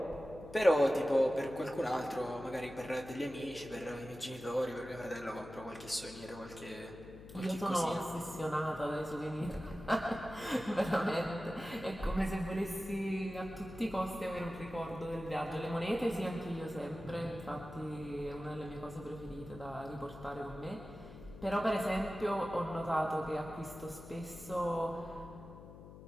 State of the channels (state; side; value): noise; left; hum, 15 dB below the sound